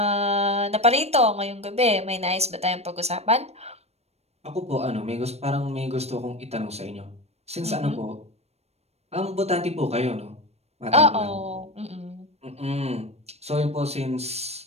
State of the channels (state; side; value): late; left; 0.31 ms